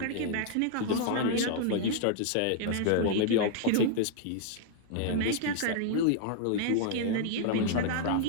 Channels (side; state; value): both; different; correlation -0.01